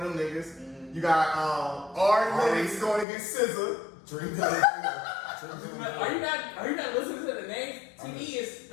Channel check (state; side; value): drops out; right; at 3.1 s